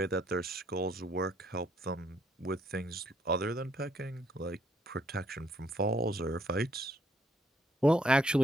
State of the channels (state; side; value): normal; both; correlation 0.69